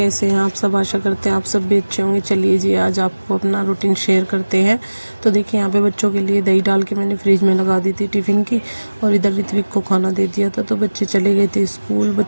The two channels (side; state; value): both; inverted; correlation -1.00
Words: हैं आप सब। आशा करते हैं आप सब भी अच्छे होंगे। चलिए जी, आज आपको अपना रूटीन शेयर करते हैं। तो देखिए, यहाँ पे बच्चों के लिए दही डाल के मैंने फ्रिज में लगा दी थी टिफ़िन की, और इधर ऋत्विक को खाना दे दिया था। तो बच्चे चले गए थे स्कूल।